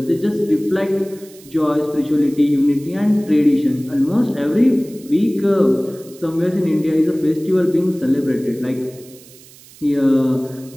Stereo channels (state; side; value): noise; right; hiss, 23 dB below the sound